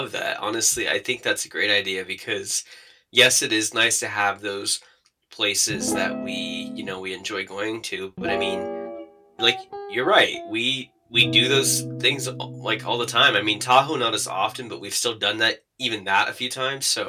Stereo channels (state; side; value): identical; both; correlation 1.00